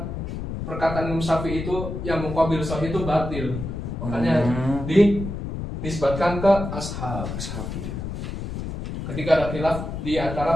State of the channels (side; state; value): left; noise; rumble, 6 dB below the sound